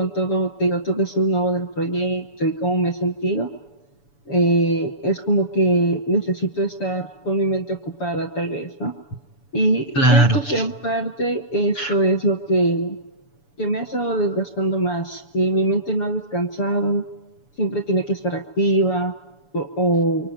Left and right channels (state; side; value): late; right; 7.0 ms